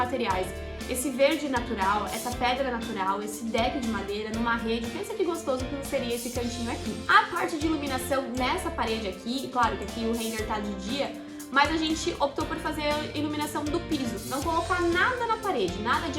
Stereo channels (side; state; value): both; identical; correlation 1.00